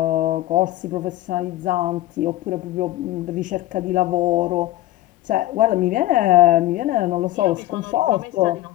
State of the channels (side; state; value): right; quieter; 15.8 dB